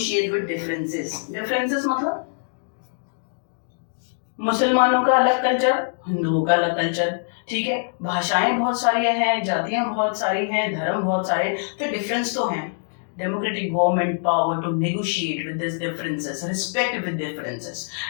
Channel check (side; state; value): right; silent; digital silence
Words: with differences. Differences मतलब मुसलमानों का अलग कल्चर, हिंदुओं का अलग कल्चर. ठीक है, भाषाएं बहुत सारी हैं, जातियां बहुत सारी हैं, धर्म बहुत सारे, तो डिफरेंस तो हैं. Democratic government power to negotiate with these differences, respect with differences.